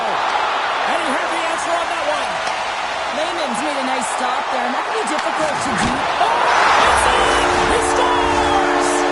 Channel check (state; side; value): identical; both; correlation 1.00